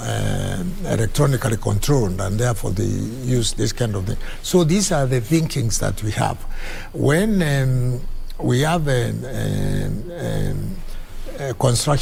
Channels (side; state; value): both; identical; correlation 1.00